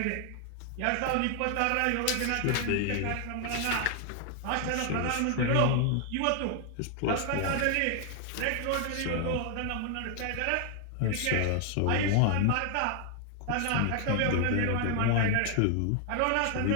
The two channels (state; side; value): different; both; correlation 0.00